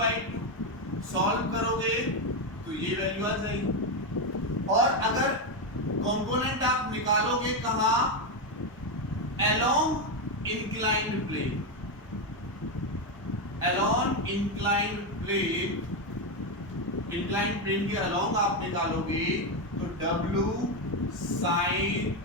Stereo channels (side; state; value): both; normal; correlation 0.08